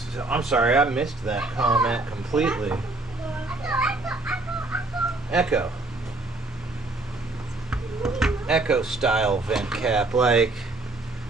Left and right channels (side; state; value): left; quieter; 3.0 dB